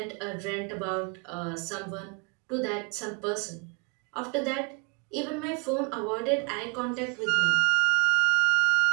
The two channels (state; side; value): quieter; left; 34.1 dB